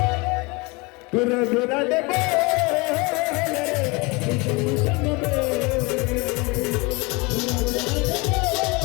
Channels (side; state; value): right; quieter; 26.6 dB